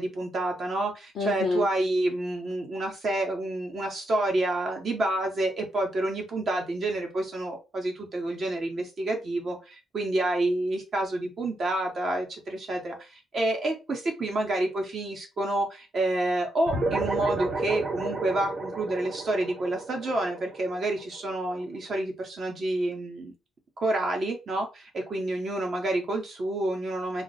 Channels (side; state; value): both; normal; correlation 0.82